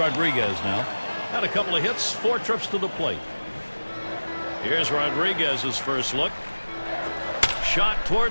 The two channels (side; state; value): both; inverted; correlation -1.00